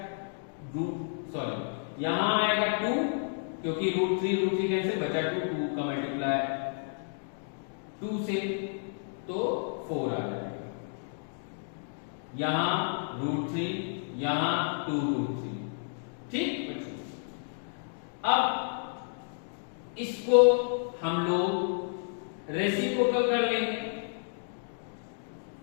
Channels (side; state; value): right; silent; digital silence